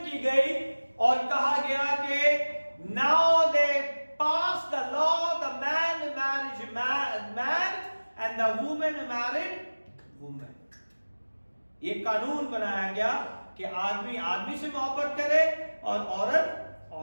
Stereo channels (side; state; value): both; inverted; correlation -1.00